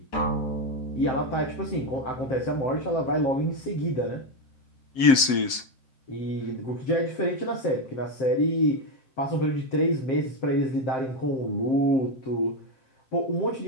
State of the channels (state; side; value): late; right; 7.6 ms